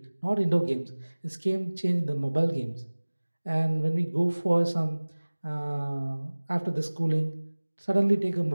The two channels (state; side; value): inverted; both; correlation -1.00